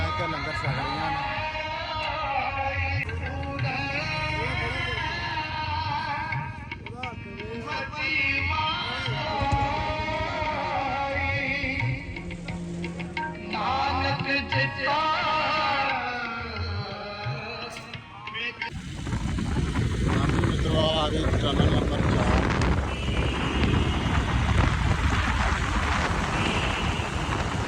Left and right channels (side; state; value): both; identical; correlation 1.00